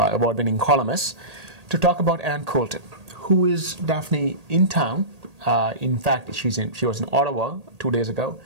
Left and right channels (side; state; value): left; late; 1.8 ms